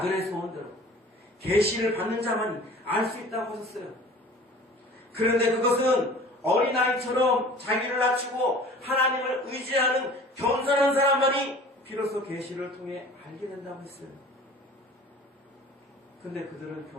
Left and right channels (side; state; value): both; normal; correlation 0.45